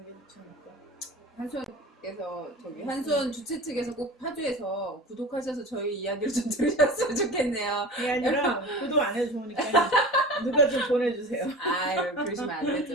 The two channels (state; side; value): normal; both; correlation 0.35